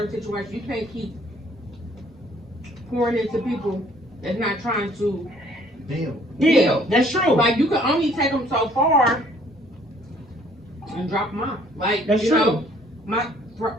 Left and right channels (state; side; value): normal; both; correlation 0.60